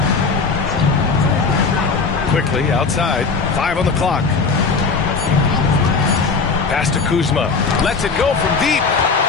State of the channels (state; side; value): quieter; right; 4.6 dB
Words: Quickly outside. 5 on the clock. Pass to Kuzma. Lets it go from deep.